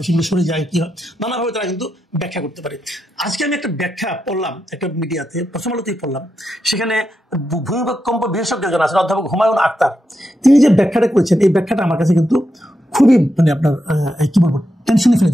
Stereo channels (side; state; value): both; normal; correlation 0.86